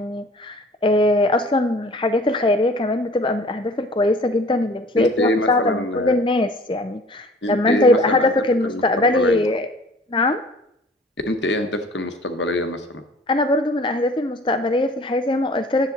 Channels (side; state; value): both; normal; correlation 0.49